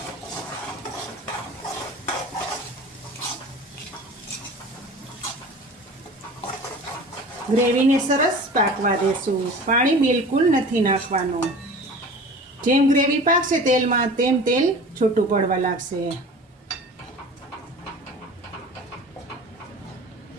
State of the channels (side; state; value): both; normal; correlation 0.39